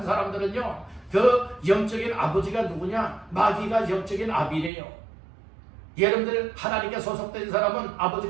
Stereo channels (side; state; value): left; drops out; at 4.7 s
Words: 사람들은요, 그 영적인 아버지가 누구냐? 마귀가 영적인 아비래요. 여러분들 하나님께 소속된 사람은